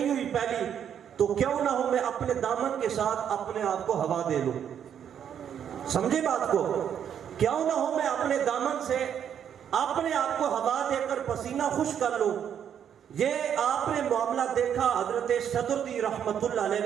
ہوئی پہلی، تو کیوں نہ ہو میں اپنے دامن کے ساتھ اپنے آپ کو ہوا دے لوں۔ سمجھے بات کو؟ کیوں نہ ہو میں اپنے دامن سے اپنے آپ کو ہوا دے کر پسینہ خشک کر لوں۔ یہ آپ نے معاملہ دیکھا حضرت صدر الدین رحمۃ اللہ علیہ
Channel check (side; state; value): left; quieter; 8.8 dB